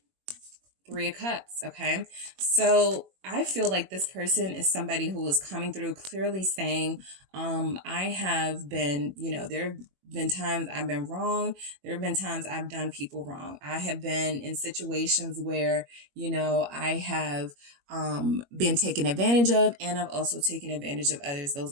Three of Cups. Okay. So I feel like this person is somebody who is coming through clearly saying, I have been, there have been times I've been wrong. There have been times I've done people wrong. I have been in situations where, I have been taken advantage of, and I've also taken advantage of others, those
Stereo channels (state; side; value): late; left; 21 ms